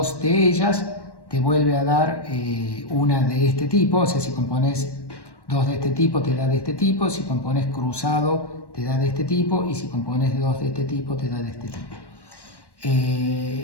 de ellas te vuelve a dar una de este tipo. O sea, si compones 2 de este tipo te da de este tipo, si compones cruzado te da de este tipo, y si compones 2 de este tipo te da de este tipo.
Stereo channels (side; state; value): right; late; 1.1 ms